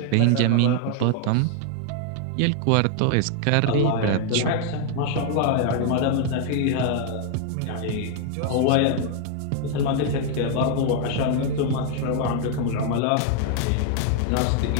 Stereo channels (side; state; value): both; different; correlation 0.00